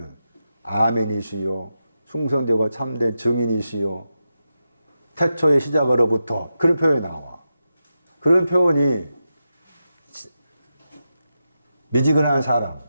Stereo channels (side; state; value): both; inverted; correlation -0.89